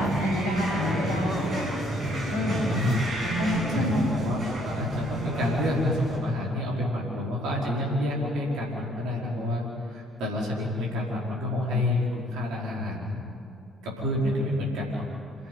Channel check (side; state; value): both; normal; correlation 0.63